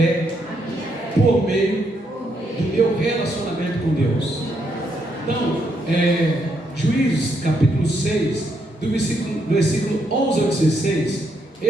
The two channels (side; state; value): both; normal; correlation 0.77